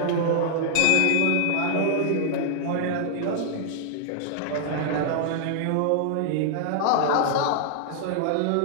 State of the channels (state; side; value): different; both; correlation 0.00